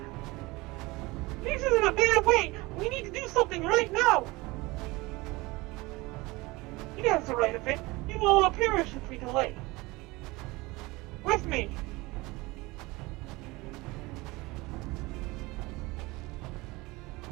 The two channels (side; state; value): left; quieter; 22.4 dB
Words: This isn't a bad way. We need to do something right now. He has the right of it. We will all perish if we delay. With me.